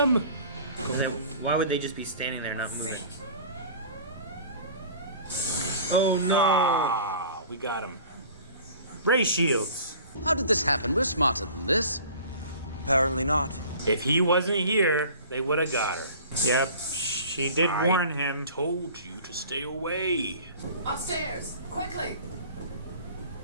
Why would they just be standing there not moving? Oh no. Ah, we got him. Ray shields. How did this happen? We're smarter than this. Apparently not. If he wasn't here, they would have got her. Yep. She did warn him. Told you to stay away. Upstairs, quickly.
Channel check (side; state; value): both; inverted; correlation -0.45